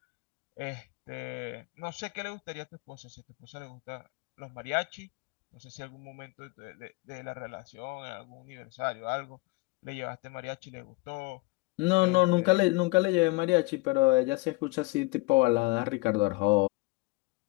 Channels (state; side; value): quieter; right; 25.3 dB